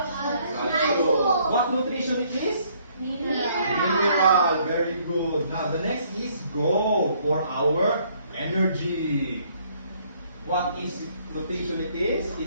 What nutrition it is? Mineral. Very good. Now the next is go for our energy. What is nutrition it is?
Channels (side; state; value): both; inverted; correlation -0.65